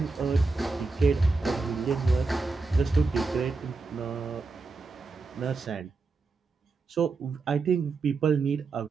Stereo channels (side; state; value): left; quieter; 4.0 dB